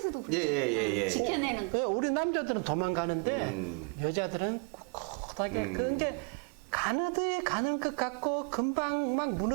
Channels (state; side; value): quieter; left; 37.4 dB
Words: 그렇죠. 예. 지켜내는 거. 예, 우리 남자들은 도망가는데 여자들은 꿋꿋하게 그게 가느드에 가는 것 같고 금방 막